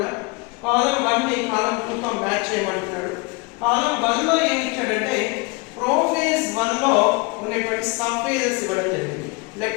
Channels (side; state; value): right; quieter; 27.8 dB